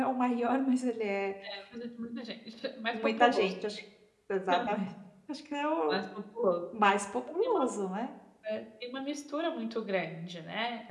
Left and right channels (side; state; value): both; identical; correlation 1.00